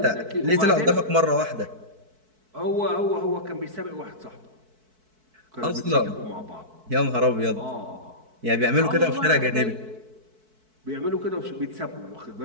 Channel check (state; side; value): late; left; 4.6 ms